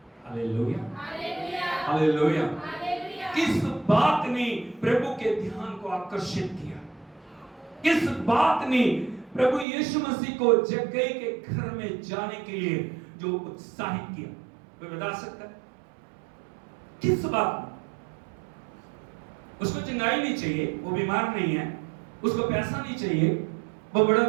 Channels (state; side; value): drops out; left; at 9.7 s